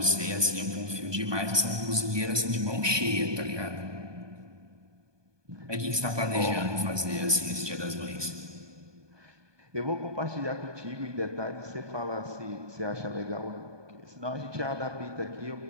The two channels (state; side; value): late; left; 1.2 ms